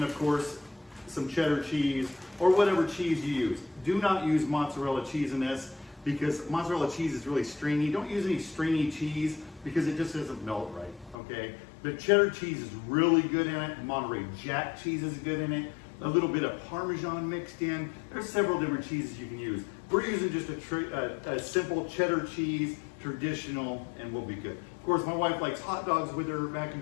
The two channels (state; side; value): drops out; right; at 11.2 s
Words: of course some cheddar cheese or whatever cheese you use. Do not use mozzarella cheese in this, because mozzarella cheese is really stringy. Don't use any stringy cheese because it just doesn't melt right, okay? But cheddar cheese is really good in it. Monterey Jack cheese is good in it. A little bit of Parmesan mixed in. There's several different cheeses you can use. We're using just a simple cheddar cheese, traditional, and we'll be good. Of course, my wife likes hot dogs with her mac